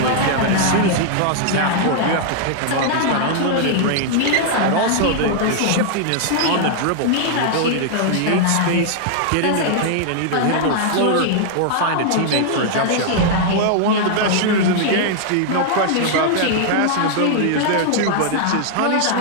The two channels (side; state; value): both; different; correlation 0.00